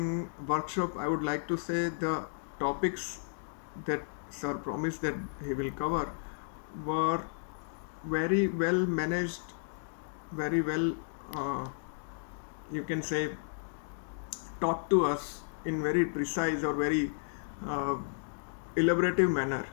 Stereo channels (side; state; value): right; silent; digital silence